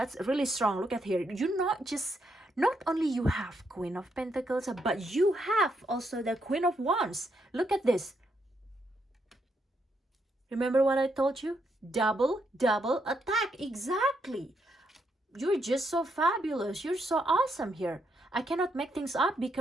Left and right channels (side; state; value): both; normal; correlation 0.78